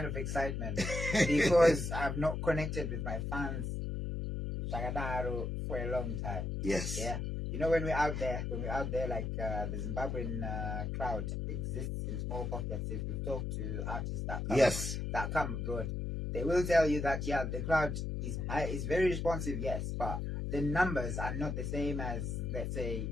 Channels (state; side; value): noise; left; hum, 2 dB below the sound